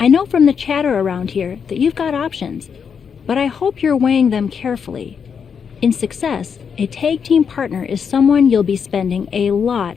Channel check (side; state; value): right; quieter; 6.7 dB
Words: know from the chatter around here that you've got options, but I hope you're weighing them carefully. In success, a tag team partner is someone you'll be spending a lot